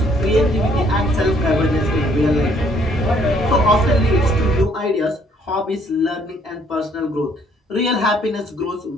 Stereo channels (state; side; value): normal; both; correlation 0.64